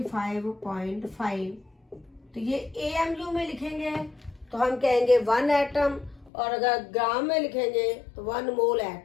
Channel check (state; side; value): drops out; right; at 6.3 s